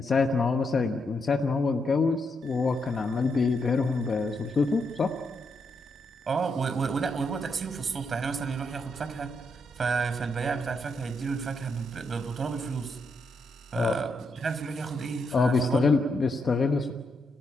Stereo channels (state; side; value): normal; both; correlation 0.80